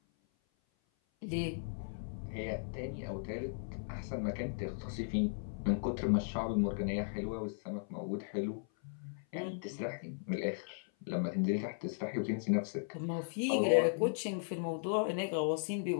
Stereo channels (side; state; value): right; silent; 53 dB below the other